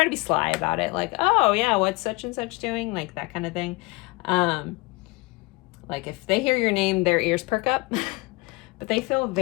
to be sly about it. Like, oh yeah, what's such and such doing? Like that kind of thing. Like if they hear your name, their ears perk up, but they feel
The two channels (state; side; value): quieter; right; 24.1 dB